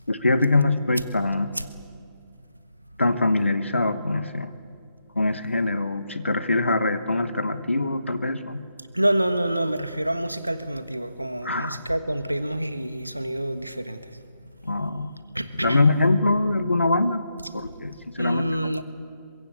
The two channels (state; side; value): inverted; both; correlation -0.84